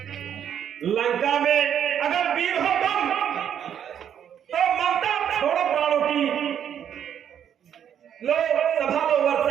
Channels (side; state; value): left; quieter; 9.1 dB